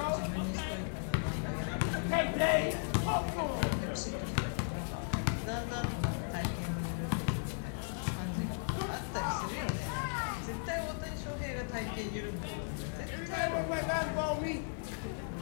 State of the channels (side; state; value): right; silent; digital silence